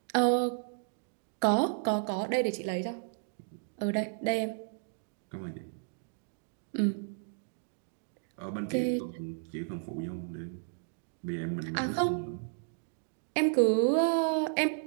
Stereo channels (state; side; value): silent; left; digital silence